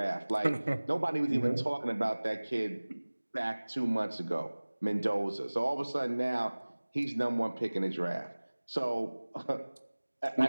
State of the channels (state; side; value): inverted; both; correlation -1.00